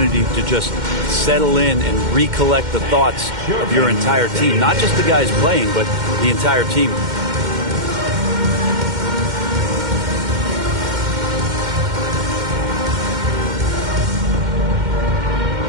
to just settle in and recollect the thoughts of your entire team. Not just the guys playing, but the entire team.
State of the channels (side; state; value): left; late; 2.1 ms